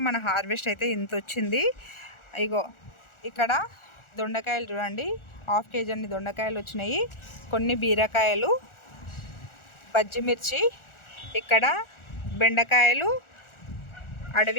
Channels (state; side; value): late; right; 1.4 ms